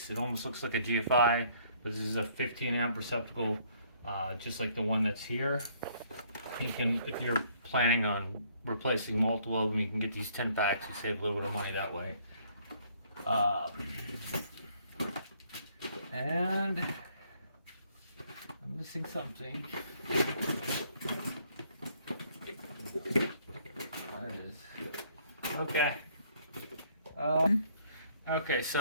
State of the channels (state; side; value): inverted; both; correlation -0.63